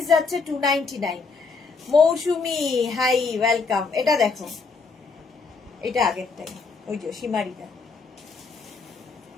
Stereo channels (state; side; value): quieter; right; 4.5 dB